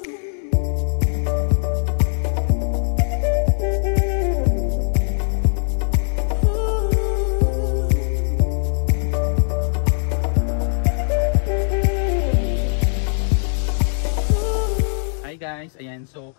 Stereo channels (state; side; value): silent; right; digital silence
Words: Guys, ayan, so